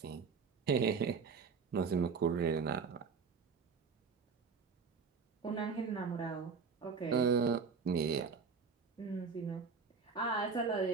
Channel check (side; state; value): left; quieter; 5.4 dB